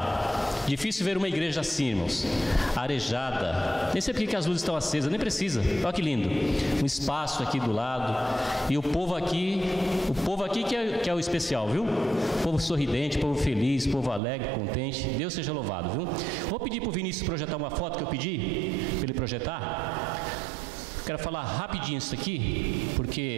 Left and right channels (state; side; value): drops out; left; at 14.2 s